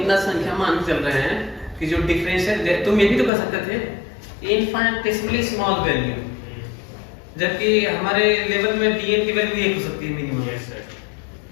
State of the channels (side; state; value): right; drops out; at 3.3 s